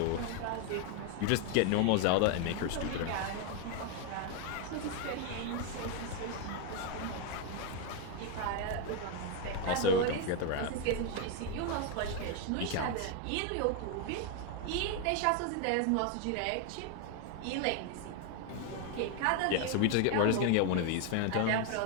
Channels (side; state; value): both; different; correlation 0.01